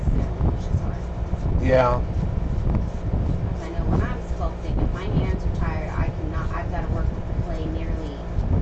push as hard. Yeah. Because I know when I'm sculpting, if my hands are tired, I've got to work with the clay nearly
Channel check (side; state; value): both; identical; correlation 1.00